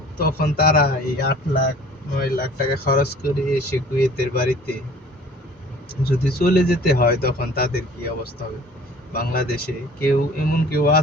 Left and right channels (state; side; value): normal; both; correlation 0.49